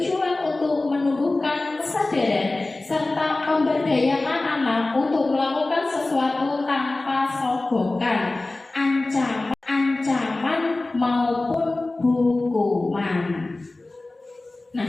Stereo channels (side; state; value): right; quieter; 3.0 dB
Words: untuk menumbuhkan kesadaran serta memberdayakan anak untuk melakukan sesuatu tanpa sogokan, ancaman maupun hukuman. Nah,